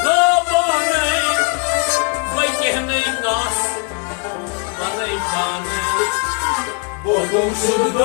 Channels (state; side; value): quieter; right; 36.2 dB